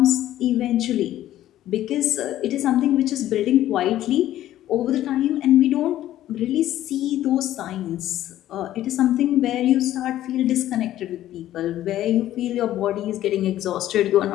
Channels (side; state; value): right; quieter; 13.2 dB